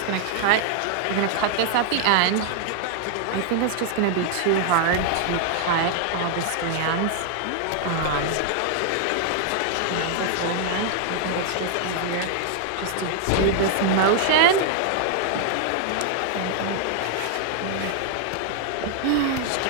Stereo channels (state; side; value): different; both; correlation 0.00